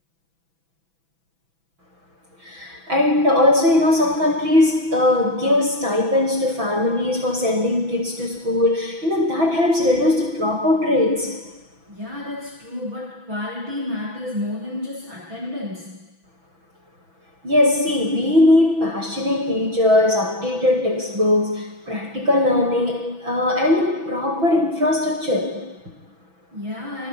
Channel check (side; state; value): left; late; 6.0 ms